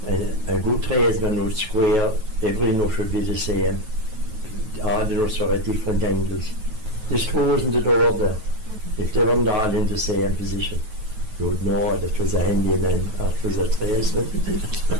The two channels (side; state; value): left; late; 9.3 ms